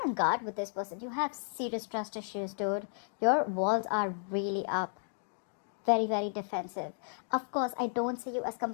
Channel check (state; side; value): silent; right; digital silence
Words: on guard with this person. You have serious trust issues, dude. Your walls are really up. Very, very defensive. Of course, I don't see you as